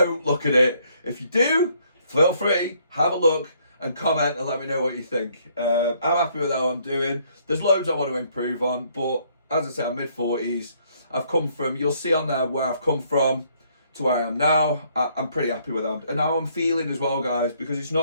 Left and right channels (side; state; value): both; inverted; correlation -0.67